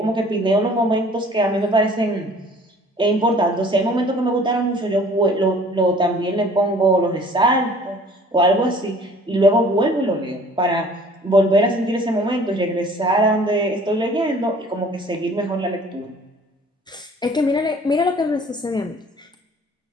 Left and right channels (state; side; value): normal; both; correlation 0.51